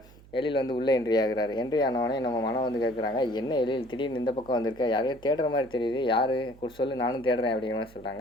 எழில் வந்து உள்ளே என்ட்ரி ஆகுறாரு. என்ட்ரி ஆனவொடனே நம்ம மனம் வந்து கேட்குறாங்க, "என்ன எழில் திடீர்னு இந்த பக்கம் வந்திருக்க? யாரையோ தேடுற மாதிரி தெரியுது. யார் சொல்லு, நானும் தேடுறேன்." அப்படிங்கிற மாதிரி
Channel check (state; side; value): noise; right; hum, 23 dB below the sound